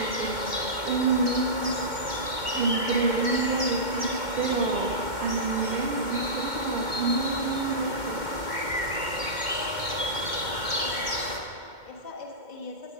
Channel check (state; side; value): late; left; 2.1 ms